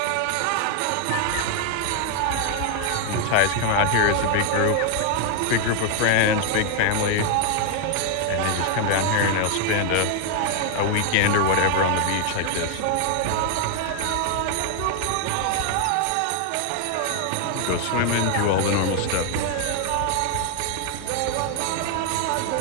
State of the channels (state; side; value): different; both; correlation 0.00